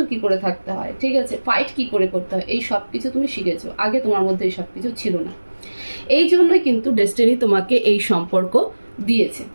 কি করে থাকতে হয়, ঠিক আছে, ফাইট কি করে করতে হয়, এই সব কিছু তুমি শিখেছো। আগে তোমার মধ্যে এই সব কিছু ছিল না। এই জন্যই কিন্তু ডেস্টিনি তোমাকে এই সম্পর্ক দিয়েছে।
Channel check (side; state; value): both; inverted; correlation -1.00